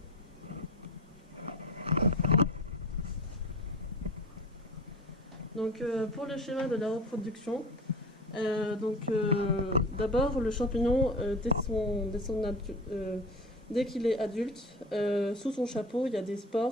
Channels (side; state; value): both; normal; correlation 0.34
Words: Donc pour le schéma de la reproduction, d'abord le champignon dès qu'il est adulte, sous son chapeau il y a des